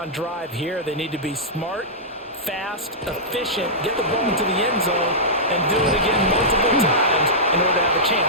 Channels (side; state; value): both; normal; correlation -0.13